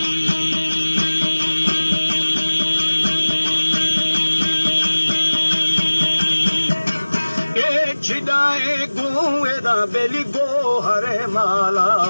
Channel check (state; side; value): inverted; both; correlation -1.00